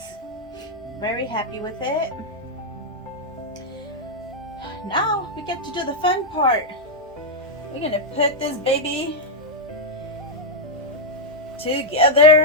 Very happy with it. Now we get to do the fun part. We're gonna put this baby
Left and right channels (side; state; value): both; normal; correlation -0.02